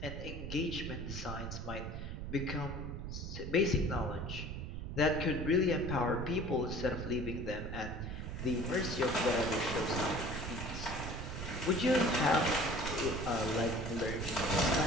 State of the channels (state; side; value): noise; right; rumble, 6 dB below the sound